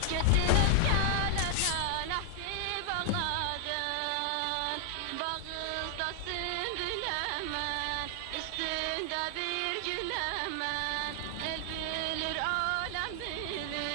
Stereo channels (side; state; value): both; different; correlation 0.00